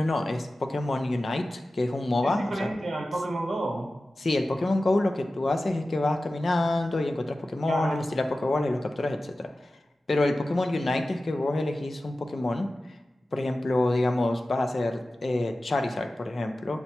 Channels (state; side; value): normal; both; correlation 0.95